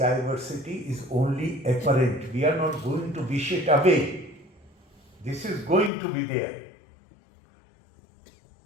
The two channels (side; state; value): right; drops out; at 5.9 s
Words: is only apparent. We are not going to wish it away. This is going to be there.